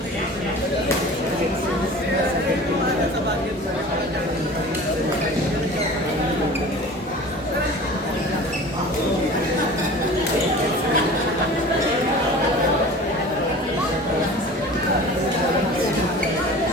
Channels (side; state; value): both; normal; correlation 0.40